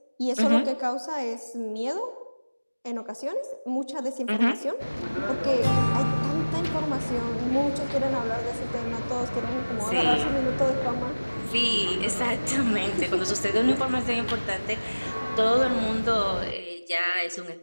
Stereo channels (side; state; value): both; inverted; correlation -1.00